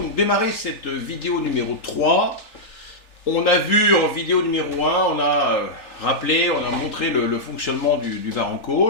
démarrer cette vidéo numéro 3. On a vu en vidéo numéro 1, on a rappelé, on a montré le fonctionnement du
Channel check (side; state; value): right; late; 3.4 ms